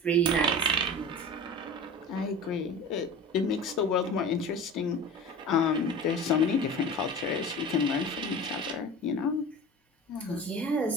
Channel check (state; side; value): normal; both; correlation 0.34